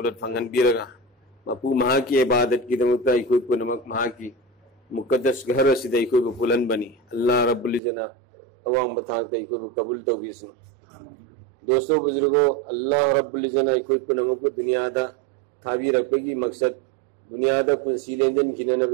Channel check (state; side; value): drops out; left; at 7.8 s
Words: فنگن بیرگا مپو مہا کی عبادت کی دمتا کوئی کو نمک مہا کی مقدس گھر سیدھا کوئی کو بلند بنی اللہ رب العزت عوام بتاتا کوئی کو قبول تو کسن دوستو بزرگو اللہ رب العزت کوئی کو نمک کو دنیا دا تھاوی رکھے مقصد دنیا دا پنسی لینجن کھینا